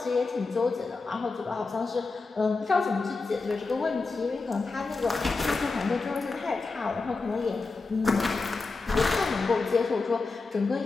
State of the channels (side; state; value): right; quieter; 3.9 dB